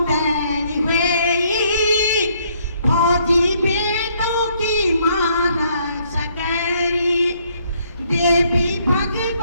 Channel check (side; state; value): both; inverted; correlation -0.68